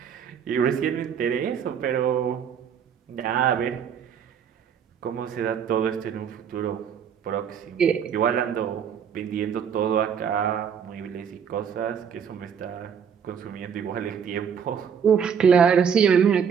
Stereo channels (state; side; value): quieter; left; 7.5 dB